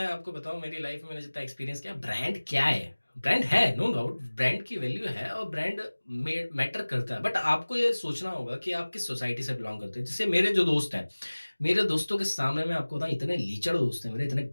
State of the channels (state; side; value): inverted; both; correlation -1.00